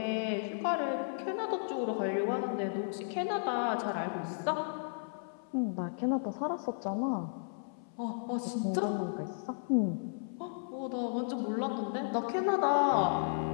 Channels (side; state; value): right; silent; 55 dB below the other